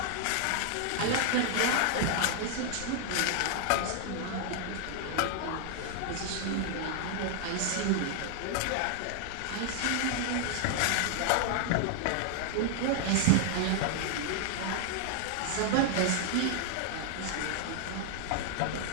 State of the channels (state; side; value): different; both; correlation 0.00